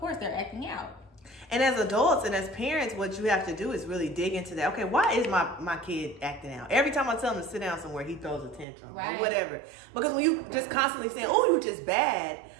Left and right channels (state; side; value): drops out; left; at 8.7 s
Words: they're acting out. And as adults and as parents, what you have to do is really dig into that. Okay, why is my kid acting out? Every time I tell him to sit down somewhere, he throws a tantrum or whatever. Because when you just constantly saying, oh, you were just bad,